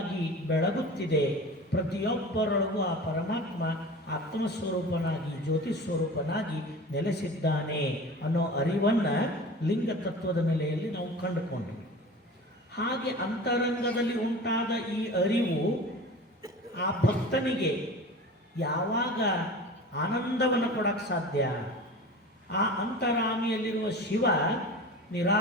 ಬೆಳಗುತ್ತಿದೆ. ಪ್ರತಿಯೊಬ್ಬರೊಳಗೂ ಆ ಪರಮಾತ್ಮ ಆತ್ಮಸ್ವರೂಪನಾಗಿ ಜ್ಯೋತಿ ಸ್ವರೂಪನಾಗಿ ನೆಲೆಸಿದ್ದಾನೆ ಅನ್ನೋ ಅರಿವನ್ನು ಲಿಂಗ ತತ್ವದ ನೆಲೆಯಲ್ಲಿ ನಾವು ಕಂಡುಕೊಂಡ್ವಿ. ಹಾಗೆ ಅಂತರಂಗದಲ್ಲಿ ಉಂಟಾದ ಈ ಅರಿವು ಆ ಭಕ್ತನಿಗೆ ಯಾವಾಗ ಆನಂದವನ್ನು ಕೊಡಕ್ಕೆ ಸಾಧ್ಯ? ಆ ಅಂತರಾಮಿಯಲ್ಲಿರುವ ಶಿವ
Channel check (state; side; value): normal; both; correlation 0.36